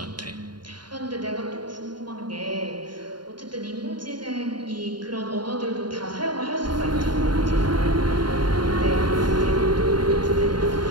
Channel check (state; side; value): late; left; 0.71 ms